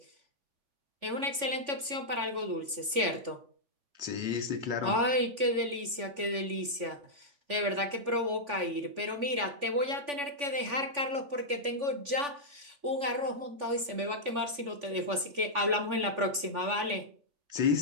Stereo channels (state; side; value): late; left; 3.5 ms